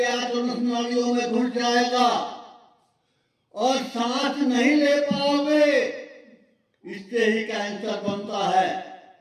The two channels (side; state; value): both; identical; correlation 1.00